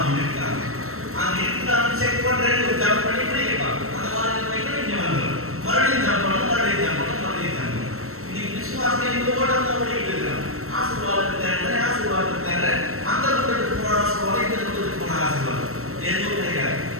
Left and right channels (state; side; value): late; left; 0.63 ms